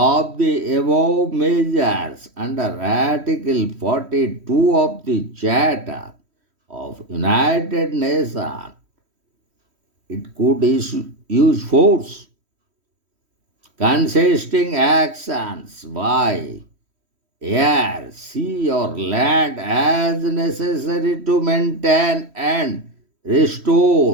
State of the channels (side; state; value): left; late; 3.1 ms